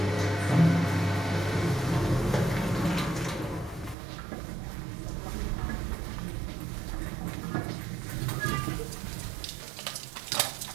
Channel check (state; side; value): drops out; left; at 4.0 s